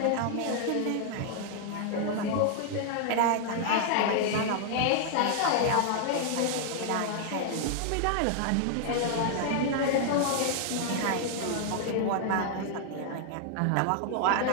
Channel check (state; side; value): different; both; correlation 0.00